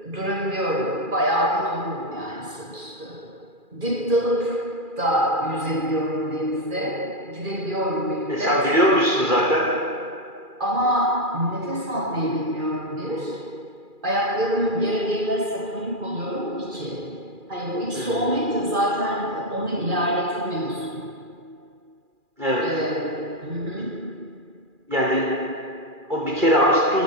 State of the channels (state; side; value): late; left; 2.4 ms